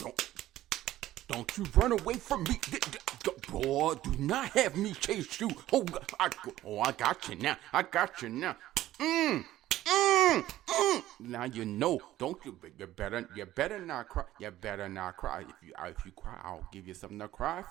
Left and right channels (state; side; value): quieter; left; 14.4 dB